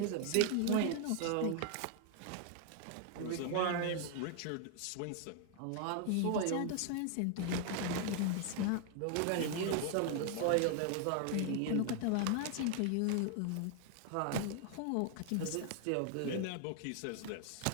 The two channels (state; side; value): different; both; correlation 0.00